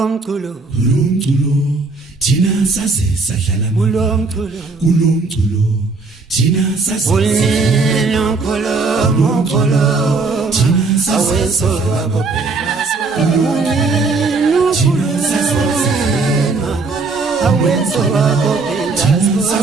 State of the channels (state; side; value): quieter; left; 4.0 dB